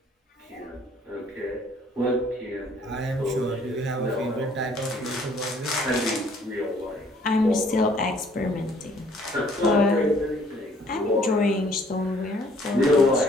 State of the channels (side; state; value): both; normal; correlation 0.61